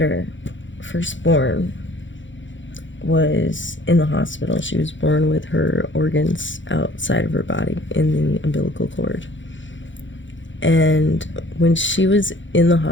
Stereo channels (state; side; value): late; right; 0.55 ms